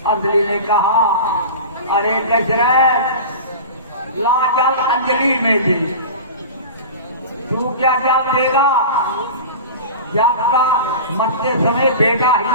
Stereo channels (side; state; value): both; inverted; correlation -0.32